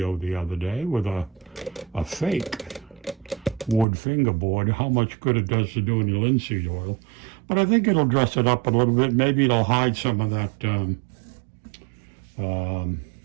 the other day with a fake wood fingerboard, how much good it does to doing the linseed oil. But I think it'll dress it up a little bit. Maybe it'll hide some of that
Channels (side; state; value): left; drops out; at 3.9 s